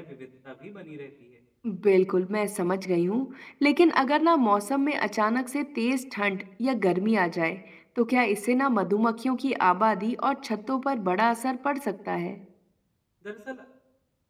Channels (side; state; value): both; identical; correlation 1.00